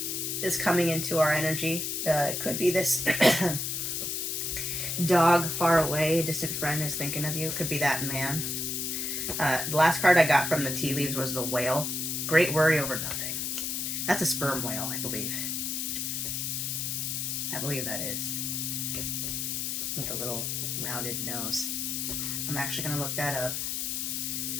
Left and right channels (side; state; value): left; noise; hiss, 2 dB below the sound